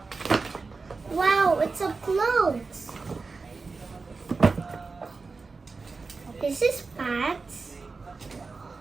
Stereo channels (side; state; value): left; quieter; 4.2 dB